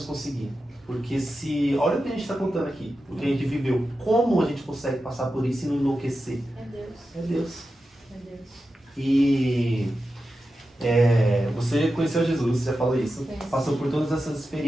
conseguir? Porque olha o que a gente está contando aqui, o que a gente viveu, como a gente consegue passar por isso e não enlouquecer? É Deus. É Deus. É Deus. E você conheceu Jesus, você já falou isso, passou por todas essas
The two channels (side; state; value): both; normal; correlation 0.91